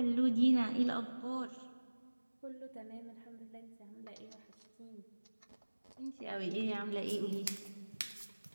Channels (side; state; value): both; inverted; correlation -1.00